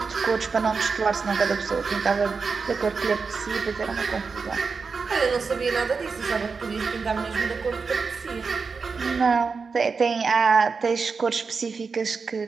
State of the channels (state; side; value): quieter; left; 5.0 dB